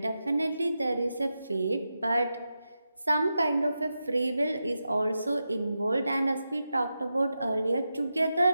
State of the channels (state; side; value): inverted; both; correlation -0.89